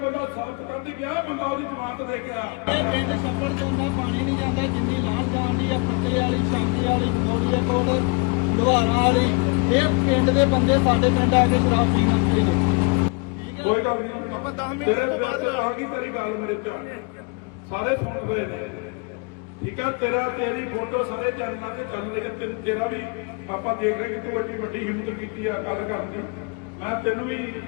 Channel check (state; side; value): quieter; right; 32.5 dB